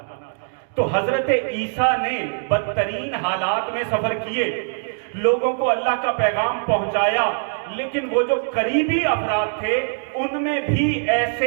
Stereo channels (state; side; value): silent; left; digital silence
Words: تو حضرت عیسیٰ نے بدترین حالات میں سفر کیے، لوگوں کو اللہ کا پیغام پہنچایا، لیکن وہ جو قریبی افراد تھے ان میں بھی